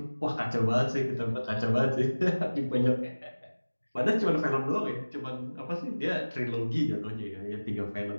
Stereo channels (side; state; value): both; inverted; correlation -1.00